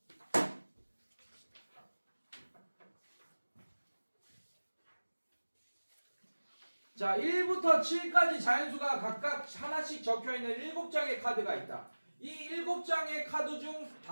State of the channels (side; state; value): both; inverted; correlation -1.00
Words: 자, 1부터 7까지 자연수가 각각 하나씩 적혀있는 7장의 카드가 있다. 이 7장의 카드 중